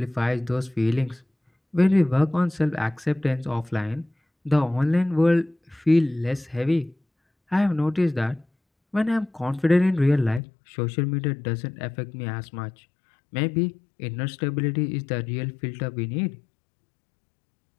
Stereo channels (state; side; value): drops out; right; at 10.4 s